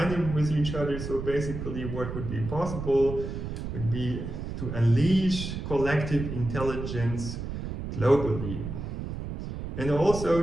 them with each other. So basically what would be possible would be to unleash collective intelligence globally, and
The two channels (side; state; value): right; noise; rumble, 6 dB below the sound